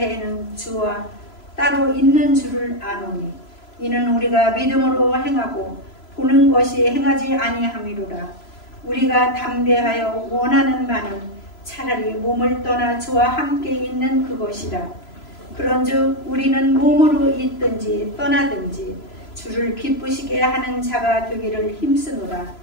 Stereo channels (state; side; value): late; right; 3.0 ms